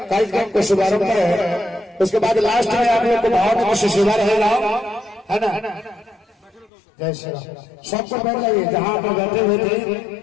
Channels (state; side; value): drops out; right; at 6.7 s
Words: कार्यक्रम को शुभारंभ है, उसके बाद लास्ट में आप लोग को भाव से सेवा रहेगा, है ना। जय श्री राम। सबको बैठ जाइए, जहाँ आप बैठे हुए थे